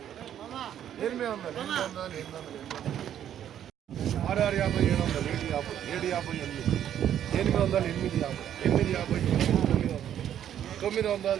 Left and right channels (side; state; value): left; quieter; 10.3 dB